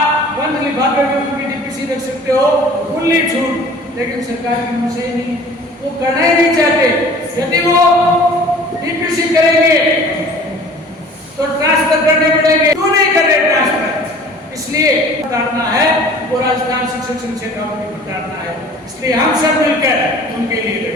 बंद लिफाफे में उनकी डीपीसी रख सकते हो, खुली छूट। लेकिन सरकार की मंशा ही नहीं, वो करना ही नहीं चाहते। यदि वो डीपीसी करेंगे तो ट्रांसफर करने पड़ेंगे, क्यों नहीं कर रहे ट्रांसफर? इसलिए उतारना है वो राजस्थान शिक्षक संघ शेखावाटी को उतारना है। इसलिए हम सब मिलकर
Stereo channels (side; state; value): both; normal; correlation 0.47